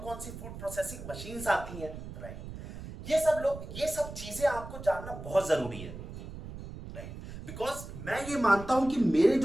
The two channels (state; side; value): noise; right; rumble, 11 dB below the sound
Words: कौन सी फूड प्रोसेसिंग मशीन्स आती हैं। राइट। ये सब चीजें आपको जानना बहुत जरूरी है। राइट। बिकॉज मैं ये मानता हूं कि मेरे